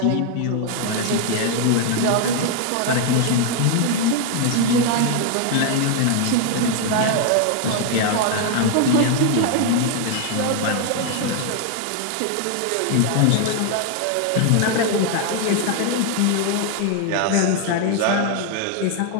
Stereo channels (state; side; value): different; both; correlation 0.00